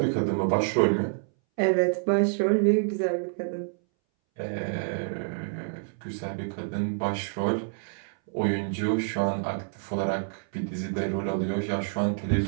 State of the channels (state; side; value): silent; left; 60 dB below the other